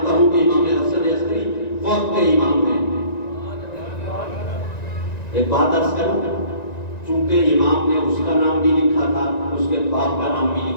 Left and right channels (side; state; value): right; late; 1.9 ms